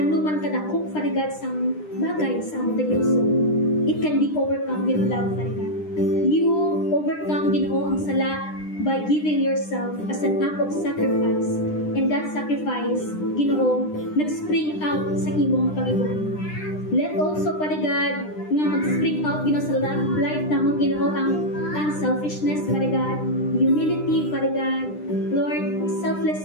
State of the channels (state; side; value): late; right; 9.9 ms